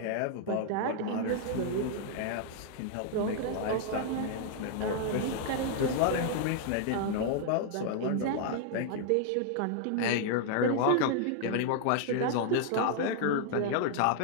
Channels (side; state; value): both; different; correlation 0.00